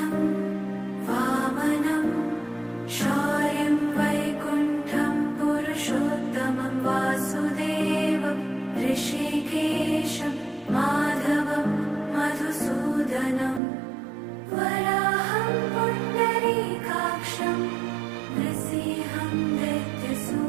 वामनं शौर्यं वैकुण्ठं पुरुषोत्तमं वासुदेवं ऋषिकेशं माधवं मधुसूदनं वराहं पुण्डरीकाक्षं नृसिंहं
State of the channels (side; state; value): left; drops out; at 13.6 s